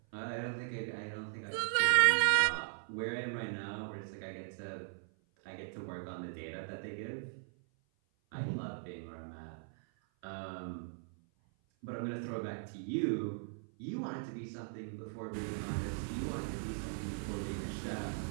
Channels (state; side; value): silent; left; 52 dB below the other